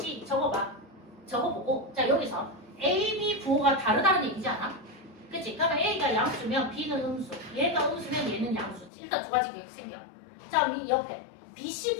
적어봐. 적어보고 자, 여기서 A, B 부호가 다르다는 얘기지 않아? 그치? 그러면 A가 양수면 B는 음수, 얘가 음수면 얘는 양수지. 일단 두 가지 계획 생겨. 자, 이 옆에 BC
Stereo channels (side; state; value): right; drops out; at 8.9 s